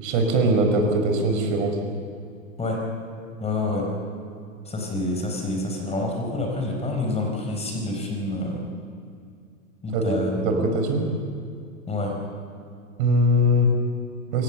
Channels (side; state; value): both; normal; correlation 0.14